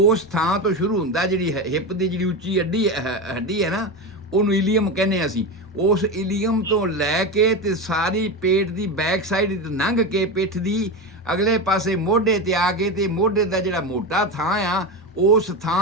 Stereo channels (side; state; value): both; normal; correlation 0.19